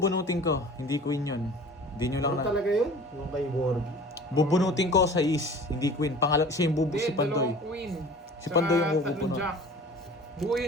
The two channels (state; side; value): normal; both; correlation 0.43